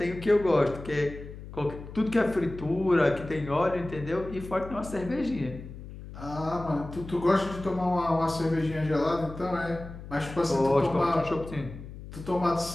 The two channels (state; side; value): noise; left; hum, 13 dB below the sound